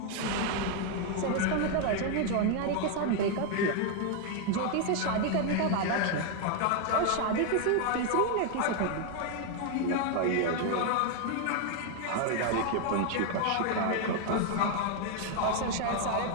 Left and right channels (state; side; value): different; both; correlation 0.00